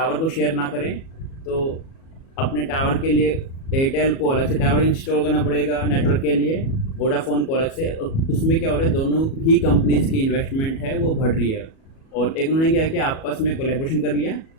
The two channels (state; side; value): late; right; 37 ms